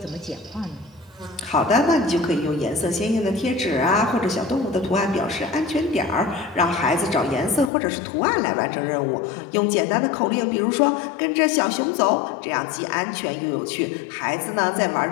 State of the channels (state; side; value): drops out; right; at 7.7 s